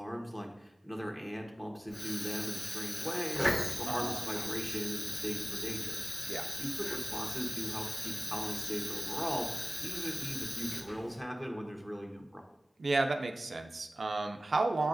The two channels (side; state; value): both; normal; correlation 0.97